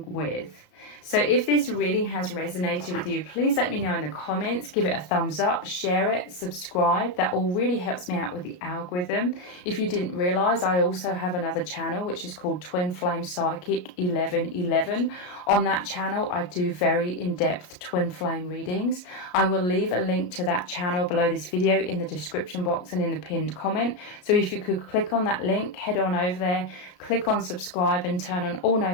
with. So if this reading has resonated with you, please let me know in the comments, give it a thumbs up, share it, subscribe. That all really helps me out with the algorithm. If you didn't realize, I also have another channel which is called Twin Flame Psychic 1111. On that channel, I do very in-depth twin flame readings. I will leave a link to that channel below this video in the description box and in the pinned comment. So if you could click on that link, head on over there, click on subscribe and turn on all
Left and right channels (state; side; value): late; right; 33 ms